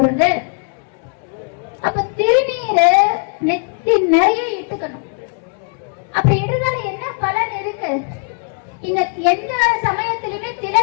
அப்ப திருநீரை நெத்தி நிறைய இட்டுக்கணும். அப்படி இடுறதால என்ன பலன் இருக்கு? இந்த எந்த சமயத்திலுமே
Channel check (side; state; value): right; quieter; 39.2 dB